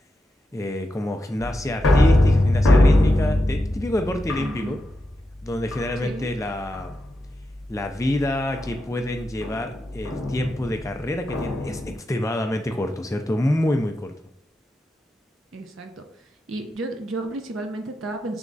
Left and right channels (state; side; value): normal; both; correlation 0.87